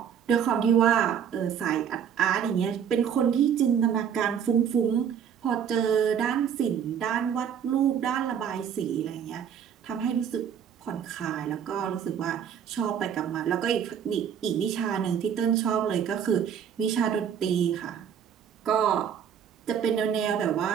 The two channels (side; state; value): left; quieter; 8.3 dB